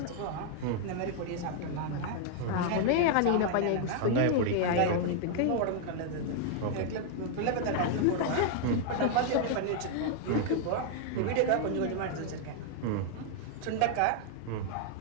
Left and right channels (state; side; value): different; both; correlation 0.00